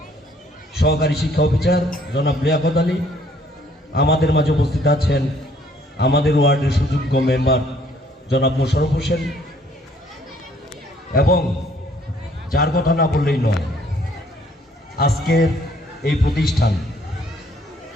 সহকারী শিক্ষা অফিসার জনাব লিয়াকত আলী আমাদের মাঝে উপস্থিত আছেন। আমাদের ওয়ার্ডের সুযোগ্য মেম্বার জনাব মোশাররফ হোসেন এবং যার কথা না বললেই নয়, আজকের এই প্রতিষ্ঠান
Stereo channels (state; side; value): normal; both; correlation 0.63